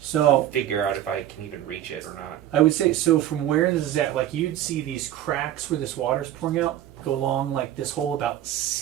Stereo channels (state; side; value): quieter; left; 12.2 dB